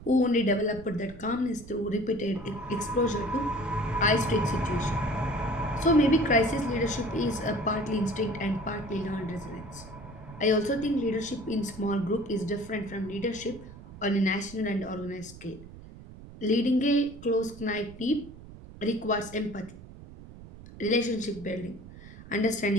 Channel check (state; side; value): noise; right; rumble, 16 dB below the sound